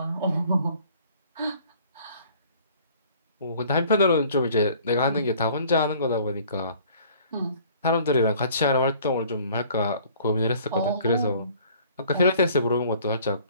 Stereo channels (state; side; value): inverted; both; correlation -0.54